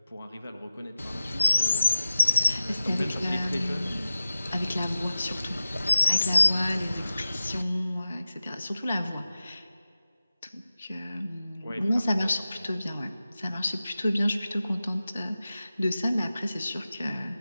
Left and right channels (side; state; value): both; inverted; correlation -0.95